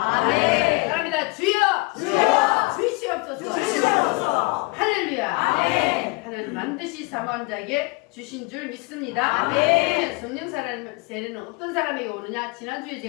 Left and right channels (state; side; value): quieter; right; 27.1 dB